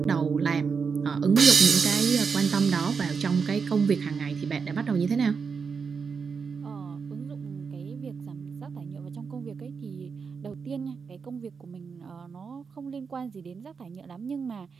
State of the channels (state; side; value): quieter; left; 5.6 dB